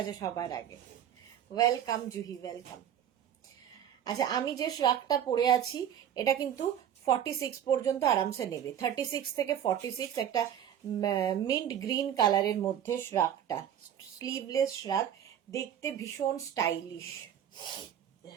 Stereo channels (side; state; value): left; quieter; 9.8 dB